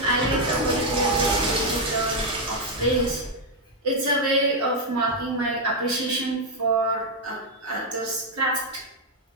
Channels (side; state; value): both; normal; correlation 0.00